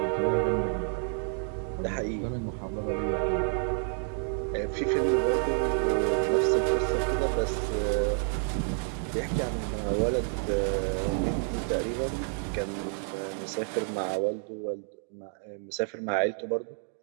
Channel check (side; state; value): left; silent; 55 dB below the other